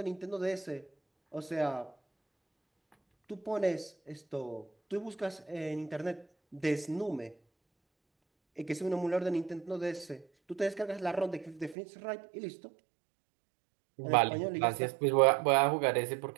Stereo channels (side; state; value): left; drops out; at 11.8 s